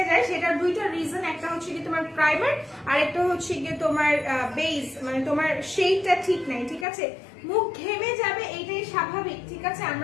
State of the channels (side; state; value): right; drops out; at 6.9 s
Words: যায়, সেটার দুইটা রিজন। একটা হচ্ছে কি তোমার প্রাইমার আর একটা হচ্ছে কি তোমার বেস, মানে তোমার শেডটা ঠিক নাই, ঠিক আছে। মুখ ঘেমে যাবে এইটাই স্বাভাবিক, ঠিক আছে।